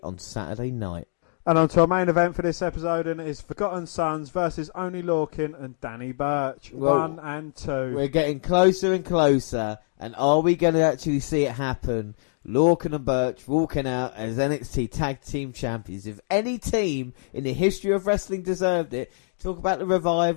on Saturday night. And on to our main event for this episode, and it is Forgotten Sons versus Oney Lorcan and Danny Burch. Well, 1 and 2. We're getting closer and closer, and are we going to actually see it happen? Lorcan and Burch walking out as NXT Tag Team Champions. If any team in the history of wrestling deserved it, talk about the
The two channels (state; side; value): silent; right; digital silence